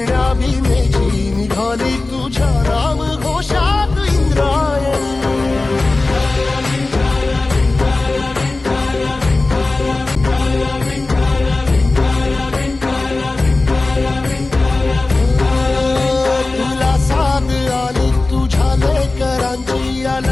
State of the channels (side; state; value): right; quieter; 3.3 dB